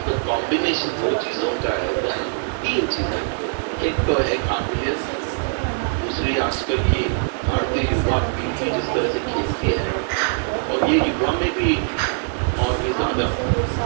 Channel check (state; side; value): silent; left; 64 dB below the other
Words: तो कॉम्बिनेशन दो चीजों का है, 3 चीजें। एक तो है काबिलियत, दूसरी आजकल की भारतीय युवा पीढ़ी जिस तरह से खेलती है और ये युवा में भी और भी ज्यादा